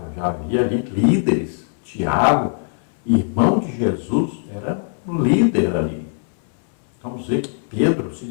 já havia ali líderes. Tiago, irmão de Jesus, era um líder ali. Então, vamos ver que Pedro se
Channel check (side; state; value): right; silent; 63 dB below the other